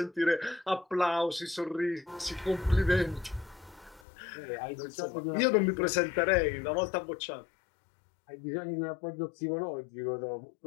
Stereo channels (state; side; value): drops out; right; at 4.0 s